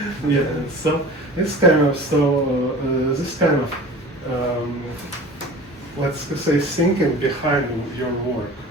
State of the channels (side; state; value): both; normal; correlation 0.40